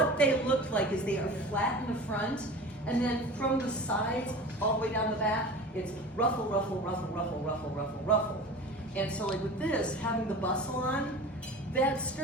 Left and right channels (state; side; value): normal; both; correlation 0.36